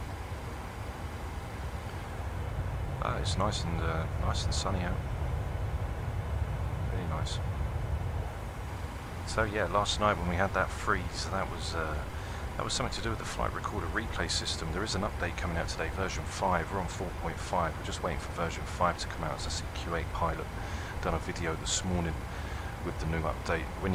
It's nice and sunny out. Really nice. So yeah, last night when we had that freeze, that was something to do with the flight recorder replay system. There is an update coming out today, version 5. We're on 4.5. We're just waiting for version 5 to come out. As I see, Q8 Pilot done a video this morning with the new update. When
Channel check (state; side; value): identical; both; correlation 1.00